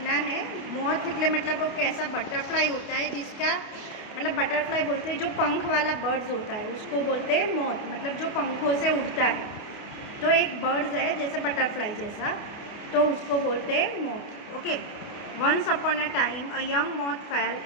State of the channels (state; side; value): late; right; 28 ms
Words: है. मोथ એટલે मतलब वो कैसा बटरफ्लाई होता है जिसका मतलब बटरफ्लाई बोलते हैं जो पंख वाला बर्ड्स होता है उसको बोलते हैं मोथ, मतलब जो पंखों से उड़ता है. तो एक बर्ड्स है जैसे बटरफ्लाई जैसा, तो उसको बोलते हैं moth. Okay. Once upon a time a young moth fell